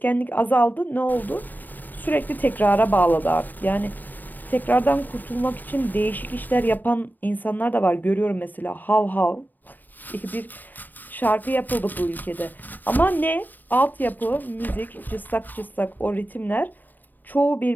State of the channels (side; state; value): right; late; 0.088 ms